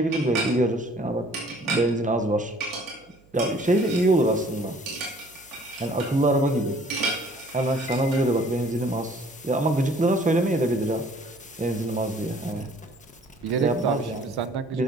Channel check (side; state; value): right; noise; hum, 30 dB below the sound